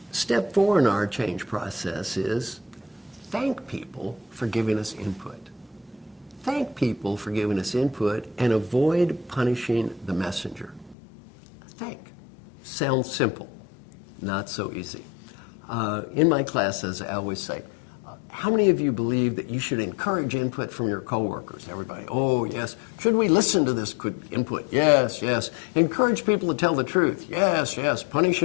4 in our change process is thank people for giving us input. Thank people for giving us input and avoid punishing the messenger. Thank. Sounds simple, not so easy. In my classes, I always say, how many of you believe that you should encourage input from your coworkers? Everybody, oh, yes. Should we listen to this input? Yes, yes. Encourage people to tell the truth? Yes, yes.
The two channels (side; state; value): right; drops out; at 11.0 s